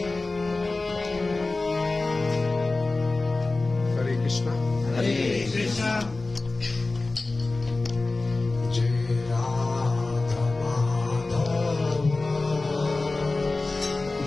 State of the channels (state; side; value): quieter; right; 3.4 dB